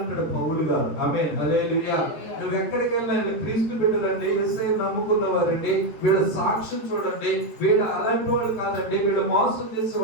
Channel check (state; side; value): late; right; 13 ms